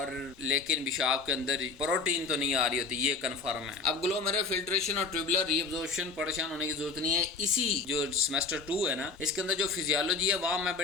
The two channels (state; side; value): quieter; right; 4.3 dB